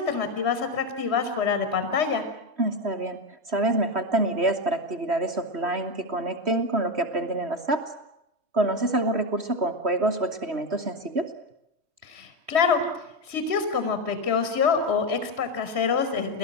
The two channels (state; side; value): late; left; 3.1 ms